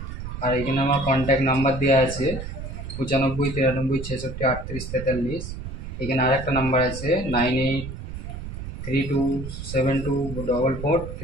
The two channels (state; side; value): noise; right; rumble, 8 dB below the sound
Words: আর এখানে আমার কন্ট্যাক্ট নাম্বার দেওয়া আছে 95 93 66 38 43। এখানে আরেকটা নাম্বার আছে